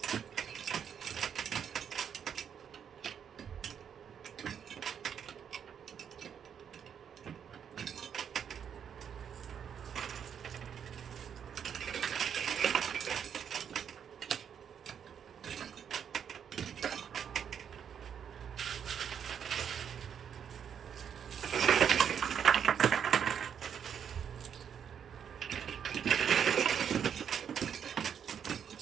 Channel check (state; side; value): quieter; left; 8.1 dB